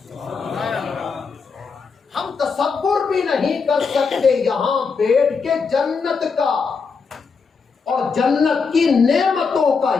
ہم تصور بھی نہیں کر سکتے یہاں بیٹھ کے جنت کا اور جنت کی نعمتوں کا،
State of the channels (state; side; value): quieter; right; 5.2 dB